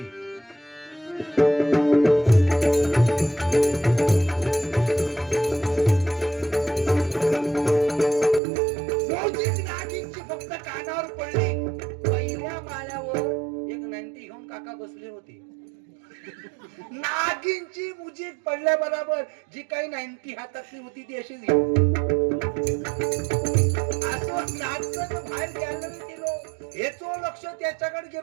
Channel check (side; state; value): left; drops out; at 8.4 s